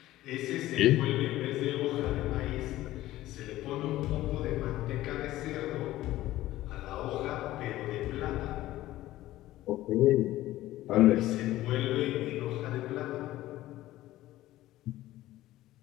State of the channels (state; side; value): quieter; right; 15.6 dB